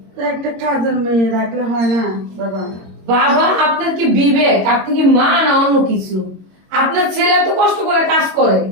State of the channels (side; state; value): left; late; 22 ms